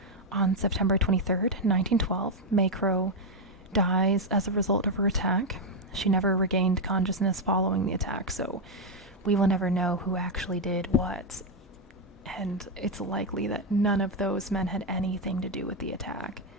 On September 23rd, 1912, Mae Crow dies as a result of her attack. She never regained consciousness following the attack, so we will never know who actually did what. And it's likely that none of those men had anything to do with the attack.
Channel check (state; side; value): normal; both; correlation 0.02